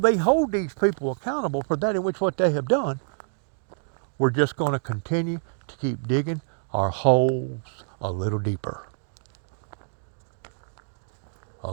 hold these people accountable for that in which what they have done, we're just going to continue to keep digging our holes a little deeper. A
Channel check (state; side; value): silent; left; digital silence